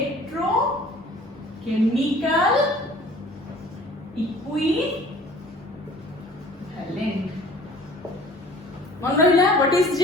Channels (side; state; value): both; normal; correlation 0.49